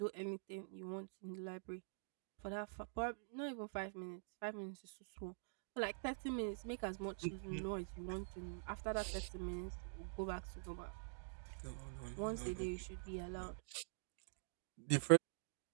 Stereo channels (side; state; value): left; silent; digital silence